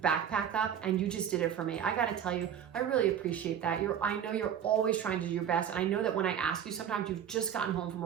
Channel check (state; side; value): quieter; left; 9.0 dB